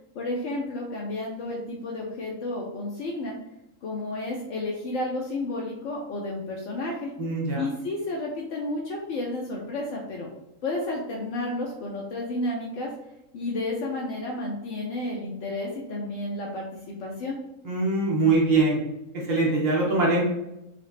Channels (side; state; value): right; late; 3.8 ms